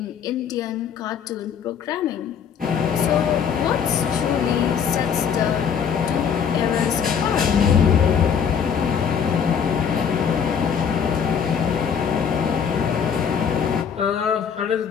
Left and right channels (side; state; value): right; quieter; 7.3 dB